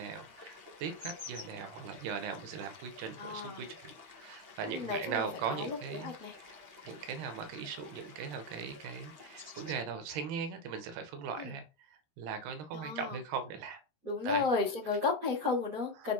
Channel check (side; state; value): left; late; 13 ms